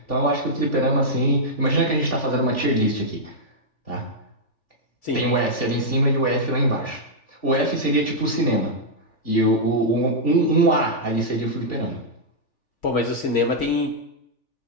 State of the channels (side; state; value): right; late; 3.4 ms